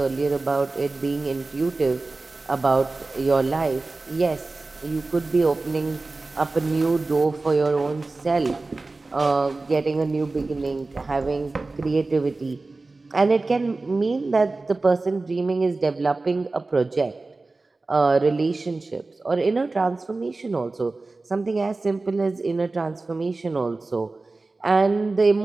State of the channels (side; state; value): left; quieter; 3.4 dB